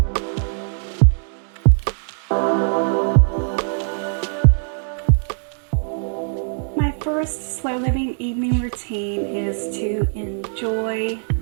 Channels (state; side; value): silent; left; digital silence